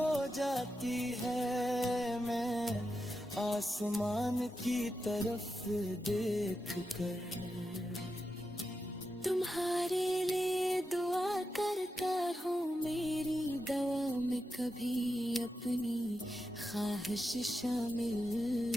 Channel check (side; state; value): both; normal; correlation 0.88